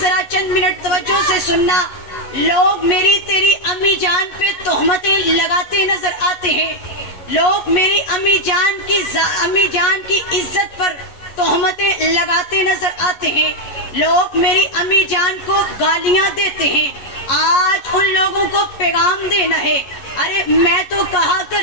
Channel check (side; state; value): right; late; 11 ms